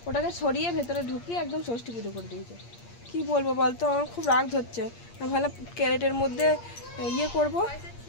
ওটাকে সরিয়ে ভেতরে ঢুকিয়ে একদম ষষ্ঠী পুজো করে দিয়েছে। কি বলবো বলতো, আমার খুব রাগ ধরছে। আমি ভালো ক্যারেটের মধ্যে ইয়ে করবো।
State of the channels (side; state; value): right; late; 8.6 ms